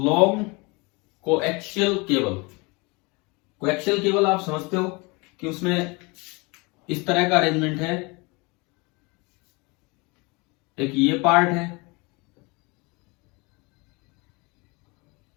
coaxial cable. Coaxial cable आप समझते हो कि उसमें इस तरह का अरेंजमेंट है, एक ये पार्ट है,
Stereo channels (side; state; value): right; quieter; 27.4 dB